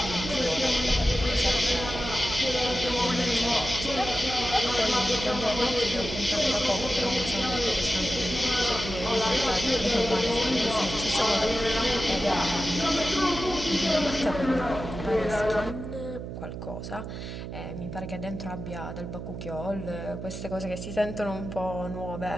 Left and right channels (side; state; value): right; noise; hum, 8 dB below the sound